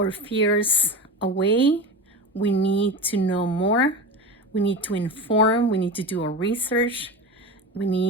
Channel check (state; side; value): normal; both; correlation 0.25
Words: fears away. We need to know more. We need to inform. We need to do our research. We